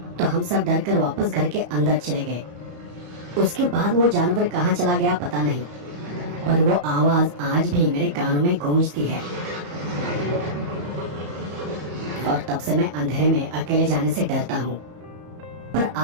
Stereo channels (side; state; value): left; late; 34 ms